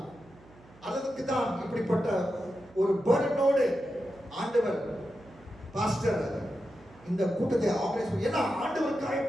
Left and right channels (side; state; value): right; noise; hum, 25 dB below the sound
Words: அதுக்கு தான் இப்படிப்பட்ட ஒரு பர்டனோடு ஆண்டவர் பாஸ்டர் இந்த கூட்டத்தை ஆர்கனைஸ் பண்ணி, ஏன்னா ஆண்டவருக்காய்